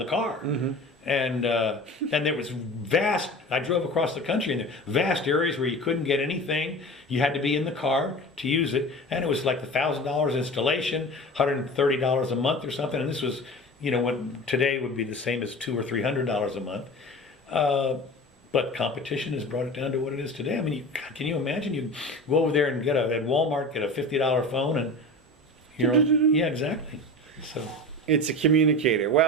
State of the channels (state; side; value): normal; both; correlation 0.34